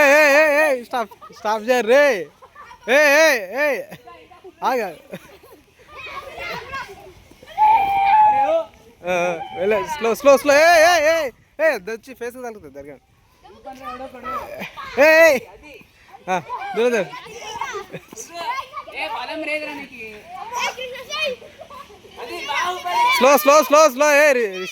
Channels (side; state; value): both; identical; correlation 1.00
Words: స్టాప్ స్టాప్ చేయరు రే. ఆగా స్లో స్లో స్లో. వచ్చి ఫేస్ తగ్గుతుంది దగ్గర. దూరం slow slow slow slow.